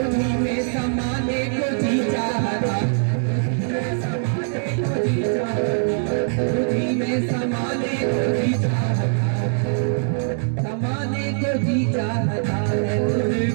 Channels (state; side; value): silent; left; digital silence